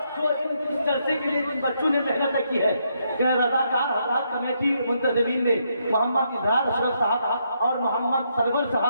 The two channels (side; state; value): both; inverted; correlation -0.77